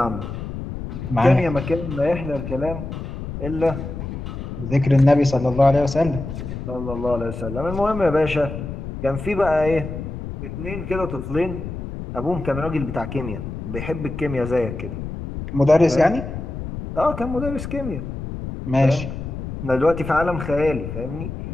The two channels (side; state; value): left; noise; rumble, 7 dB below the sound